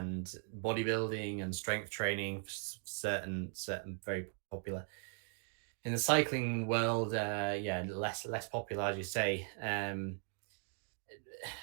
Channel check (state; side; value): silent; left; 52 dB below the other